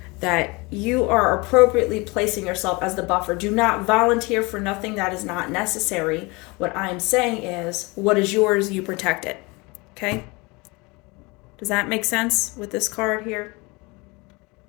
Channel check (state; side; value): quieter; right; 25.8 dB